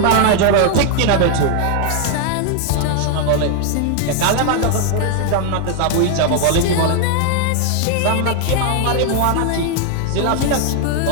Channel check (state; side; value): different; both; correlation 0.00